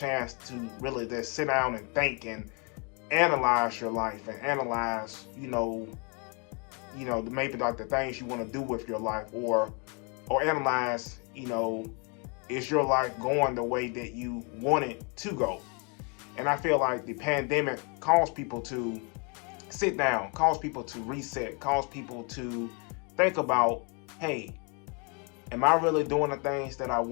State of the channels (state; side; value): quieter; right; 34.6 dB